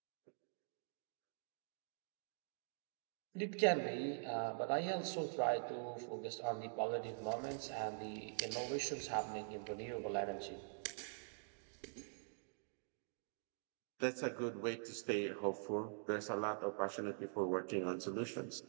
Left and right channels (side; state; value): left; silent; digital silence